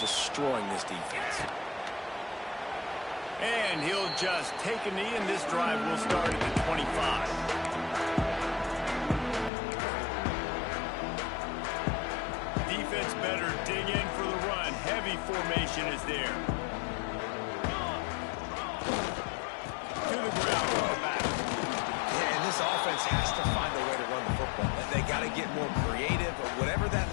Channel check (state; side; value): drops out; right; at 9.5 s